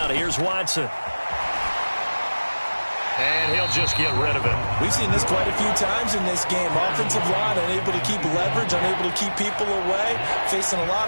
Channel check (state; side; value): inverted; both; correlation -1.00